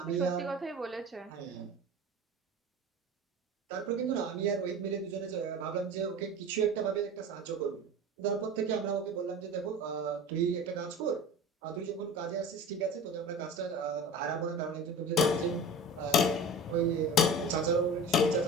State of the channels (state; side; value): normal; both; correlation 0.36